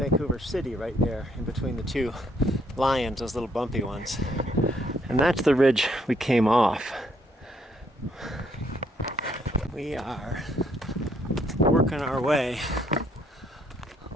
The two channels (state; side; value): normal; both; correlation 0.69